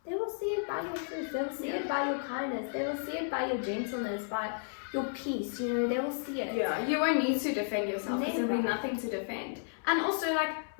They will see it by your fruits. They will see it by your kindness. They will see it by your gentleness, by your peace. They will see it. Yeah, you won't need to defend yourself, because there'll be nothing to defend. And also, like,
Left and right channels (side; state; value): right; silent; 56 dB below the other